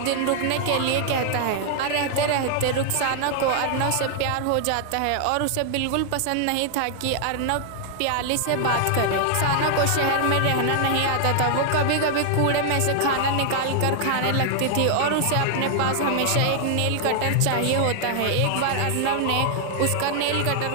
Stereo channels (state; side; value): different; both; correlation 0.00